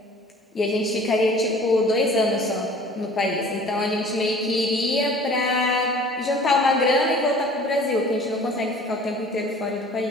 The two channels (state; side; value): normal; both; correlation 0.48